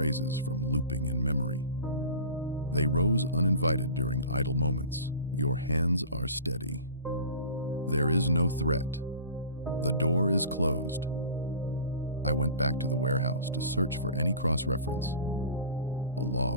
from looping in memory. They rose uninvited during idle moments. Your hands are steady. There is no threat. The door is closed. I went back to the warehouse to search for any cross-reference. A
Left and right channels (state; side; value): inverted; both; correlation -0.39